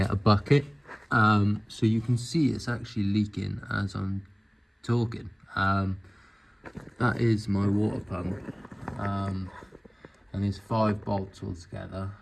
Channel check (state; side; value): identical; both; correlation 1.00